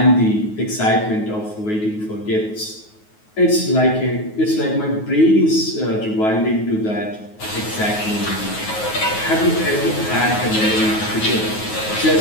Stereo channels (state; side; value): late; right; 9.4 ms